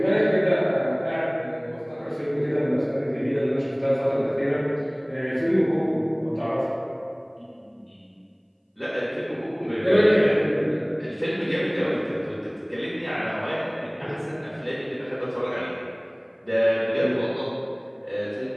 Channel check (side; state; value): both; identical; correlation 1.00